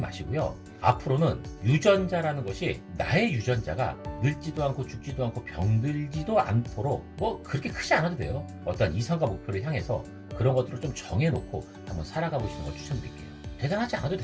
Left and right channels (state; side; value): identical; both; correlation 1.00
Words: 앞으로는 유전자라는 것이 나의 유전자가 늙지도 않고 죽지도 않고 병들지도 않도록 뭐 그렇게 크지 않아도 돼요. 어떤 이상과 목표를 향해서 그런 것들을 좀 정해놓고 한번 살아가 보시는 걸 추천드릴게요. 대단하지 않아도